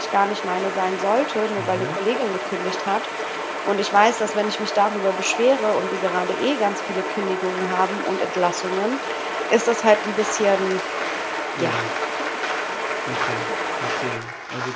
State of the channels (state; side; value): identical; both; correlation 1.00